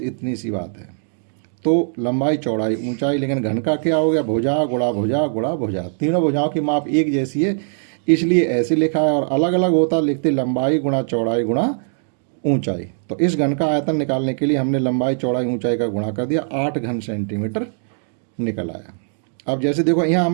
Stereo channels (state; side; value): silent; left; digital silence